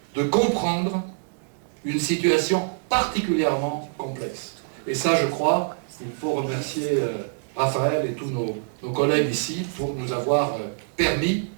de comprendre une situation particulièrement complexe. Et ça, je crois, il faut remercier Raphaël et tous nos collègues ici pour nous avoir permis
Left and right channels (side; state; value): left; silent; digital silence